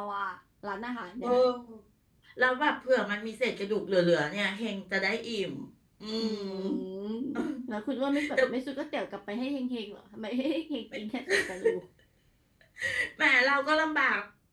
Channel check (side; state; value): both; identical; correlation 1.00